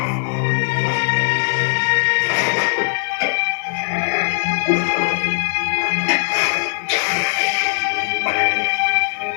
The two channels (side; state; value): right; silent; 59 dB below the other